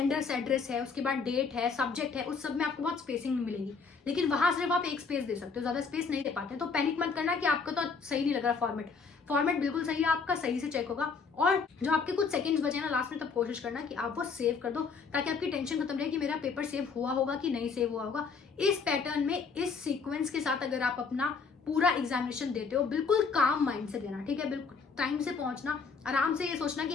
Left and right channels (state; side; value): quieter; right; 5.1 dB